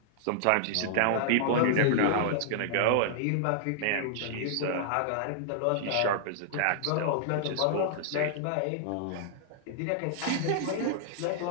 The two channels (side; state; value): both; different; correlation -0.01